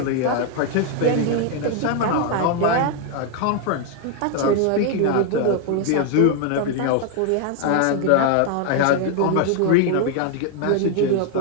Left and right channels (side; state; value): both; different; correlation 0.00